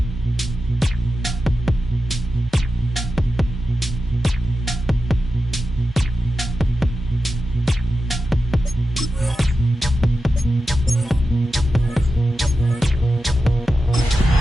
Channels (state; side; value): normal; both; correlation 0.91